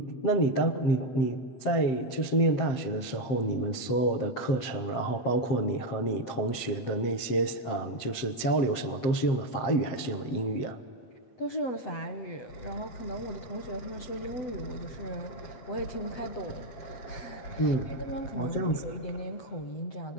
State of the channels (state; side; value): late; right; 7.6 ms